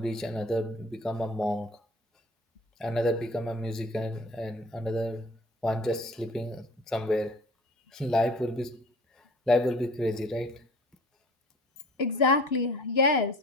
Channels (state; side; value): normal; both; correlation 0.47